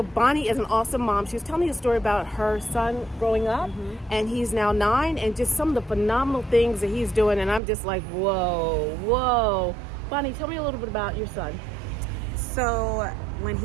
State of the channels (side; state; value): left; drops out; at 7.6 s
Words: Bonnie is an awesome mom. She was telling me a story about her son growing up, and he's now 9, and just some of the phenomenal things that he's doing. And I'm just like, whoa. Bonnie, tell me a little bit about your son. So when